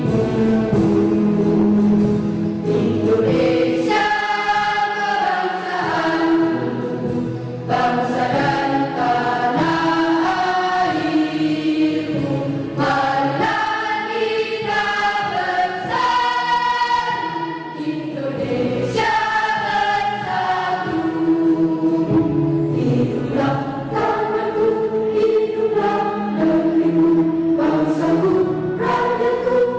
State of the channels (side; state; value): both; identical; correlation 1.00